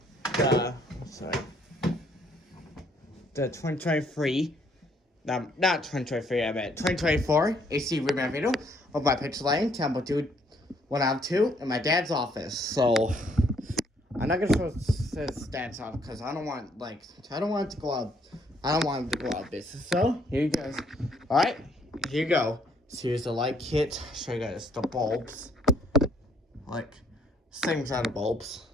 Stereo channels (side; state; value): both; normal; correlation 0.66